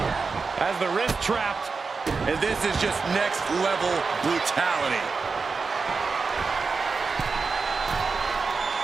As the wrist trapped. And this is just next level brutality.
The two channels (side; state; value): left; quieter; 4.6 dB